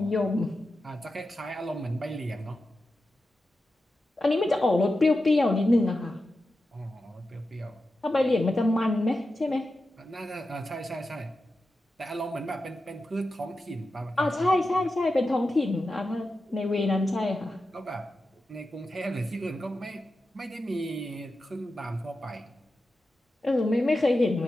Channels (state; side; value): normal; both; correlation 0.91